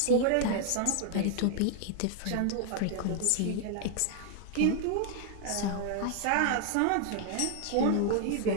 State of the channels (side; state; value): both; different; correlation 0.00